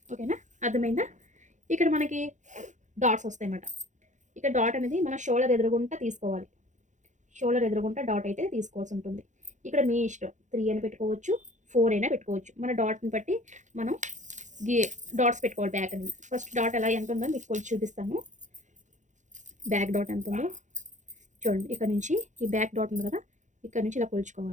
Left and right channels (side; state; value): left; late; 0.35 ms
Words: ఓకేనా, అర్థమైందా? ఇక్కడ మనకి డాట్స్ వస్తాయి అన్నమాట. ఇక్కడ డాట్ అనేది మన షోల్డర్ ఎదురుగుంటా తీసుకోవాలి. షోల్డర్ ఎదురుగుంటా డాట్ అయితే తీసుకోవాల్సి ఉంటుంది. ఇక్కడ మీ ఇష్టం, 3 అయినా పెట్టుకోవచ్చు, 4 అయినా పెట్టుకోవచ్చు. మన డాట్ని బట్టి మనం డాట్స్ పెట్టుకోవాలి. బ్యాక్ అనేది ఫస్ట్ డాట్ ఎలా ఎంత ఉందో మీకు కొంచెం చూపిస్తాను. బ్యాక్ డాట్ ఎంత ఉందో చూడండి. ఇక్కడ నుంచి ఈ బ్యాక్ డాట్ ఉంది కదా, ఇక్కడ నుంచి ఇలా